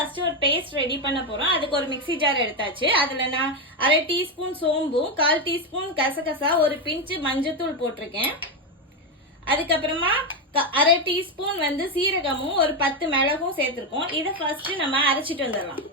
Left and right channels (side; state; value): both; normal; correlation 0.09